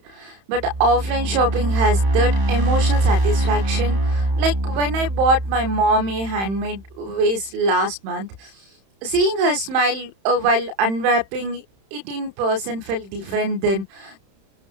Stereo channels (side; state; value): left; late; 31 ms